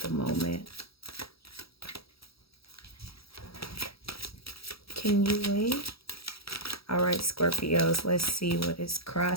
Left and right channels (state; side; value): late; right; 0.76 ms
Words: moment? Can you wait? All right, Scorpios, let's see what is